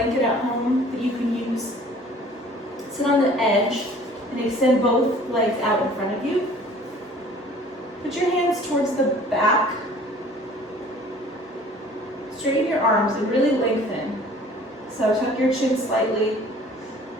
at home that you can use, sit on the edge and extend both legs out in front of you. Put your hands towards the back. Straighten your arms and really lengthen. So tuck your chin slightly.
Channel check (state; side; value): normal; both; correlation 0.51